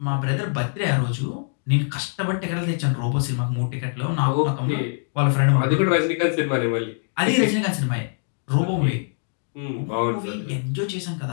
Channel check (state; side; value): silent; right; 63 dB below the other